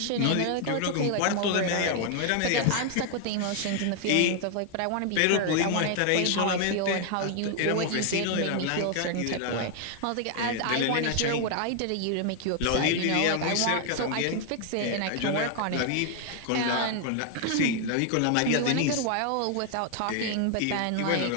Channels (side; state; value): both; different; correlation 0.00